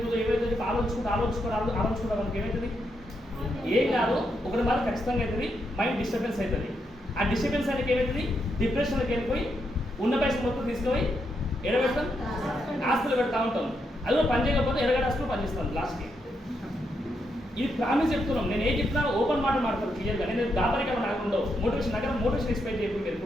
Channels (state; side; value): normal; both; correlation 0.81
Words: ఆలోచించుకుంటా మనకి ఏమవుతుంది? ఏం కాదు, ఒకటి వల్ల ఖచ్చితంగా అవుతుంది, మైండ్ డిస్టర్బెన్స్ అవుతుంది. ఆ డిస్టర్బెన్స్ అనేది ఏమవుతుంది? డిప్రెషన్కి వెళ్ళిపోయి ఉన్న పైసలు మొత్తం తీసుకుపోయి ఎడబెడతాం, ఆస్తులు పెడతా ఉంటాం. అదో పని చేయకపోతే ఎరగడ ఆస్తులు పనిచేస్తాం లాస్ట్కి. ఇది ప్రామిస్ చెప్తున్నాం. నేను ఏం చెప్తున్నా ఓపెన్ మాట మాట్లాడతాను క్లియర్గా. నేను దాపరికలు నాకు ఉండవు. మోటివేషన్ ఎక్స్పెక్ట్ చేయకుండా మీరు